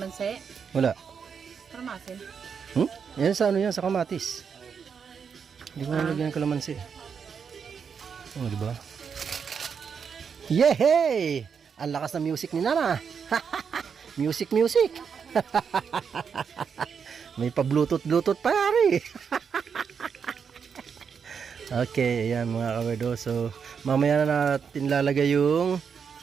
Wala. Karamasin. Yan sa ano yan, sa kamatis. Hindi ko nalagyan ng kalamansi. Oh, di ba? Yehey! Ang lakas ng music ni Nana. Music. May pa-bluetooth pa yari. Okay, ayan mga kawerdo. So, mamaya na natin lalagay yung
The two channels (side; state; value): left; quieter; 6.6 dB